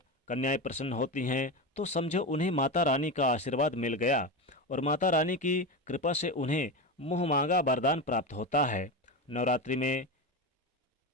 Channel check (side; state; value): both; normal; correlation 0.19